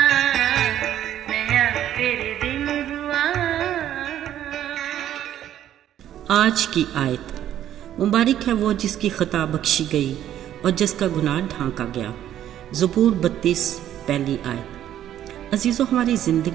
नया फिर दिन हुआ। आज की आयत। मुबारक है वो जिसकी खता बख्शी गई और जिसका गुनाह ढांका गया। ज़बूर 32 पहली आयत। अजीज़ों, हमारी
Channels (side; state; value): left; quieter; 11.4 dB